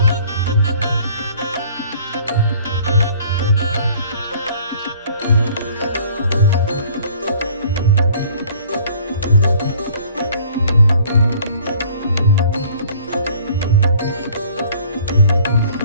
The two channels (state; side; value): inverted; both; correlation -0.53